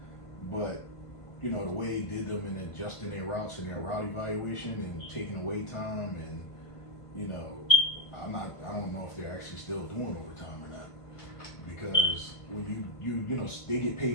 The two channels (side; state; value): right; late; 1.5 ms